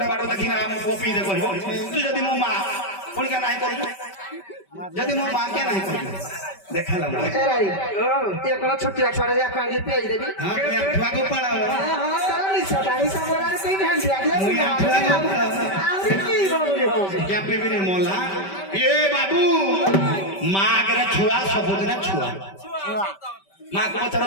बाडो देखिना हम कोपी दे कहबो तू जदी मो मा कोन के नाही करू जदी मो मा के नाही करू देखाला ए राई ए कोन छोटी छोड़ा जा कांगी पेज देबी हां मैं छुआ को पड़ा हां तारी सदाई सबरार कोई ध्यान दिया मुई छुआ को आउरी की बोली हो क्या पीबी नहीं मोला ए बाबू माँ के छुआ सबुदिन छुआ माँ को पचार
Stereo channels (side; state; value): right; late; 5.2 ms